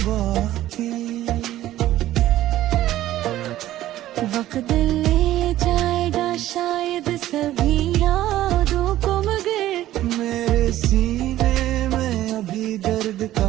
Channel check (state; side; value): quieter; left; 14.1 dB